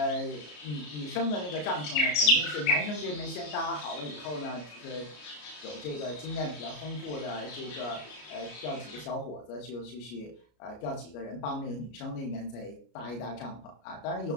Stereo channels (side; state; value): right; late; 33 ms